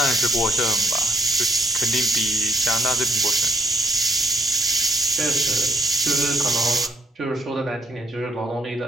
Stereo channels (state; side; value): normal; both; correlation 0.71